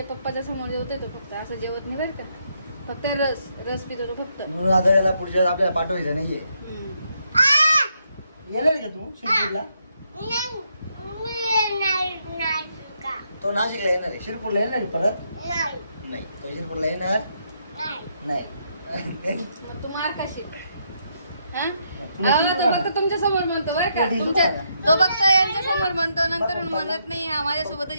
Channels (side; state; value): both; inverted; correlation -0.77